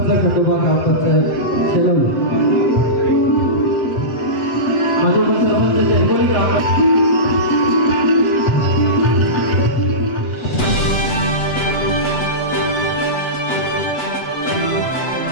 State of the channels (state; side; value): late; right; 8.0 ms